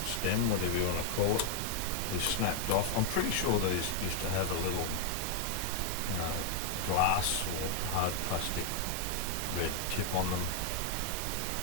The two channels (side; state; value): both; different; correlation 0.00